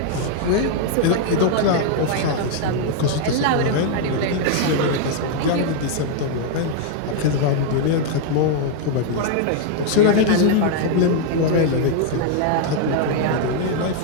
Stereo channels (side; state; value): both; different; correlation 0.00